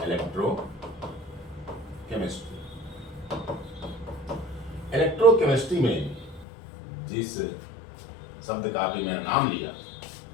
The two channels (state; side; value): drops out; right; at 6.5 s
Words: इलेक्ट्रोकेमिस्ट्री में जिस शब्द का भी मैंने नाम लिया,